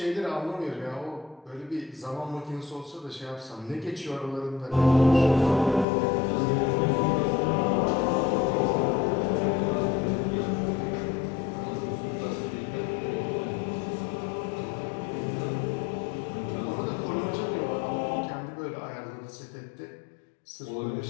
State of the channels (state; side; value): drops out; right; at 5.9 s